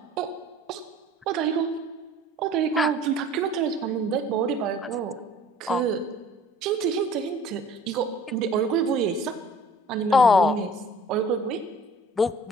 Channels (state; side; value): normal; both; correlation 0.49